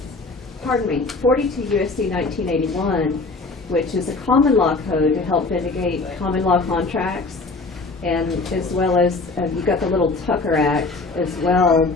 42 USC 1981, which is a common law code to help vindicate common law contracts, and as well as you've got the little Tucker Act as well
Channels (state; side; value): quieter; right; 3.6 dB